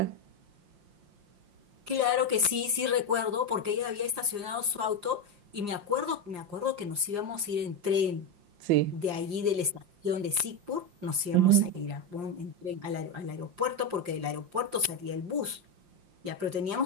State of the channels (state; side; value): late; left; 5.7 ms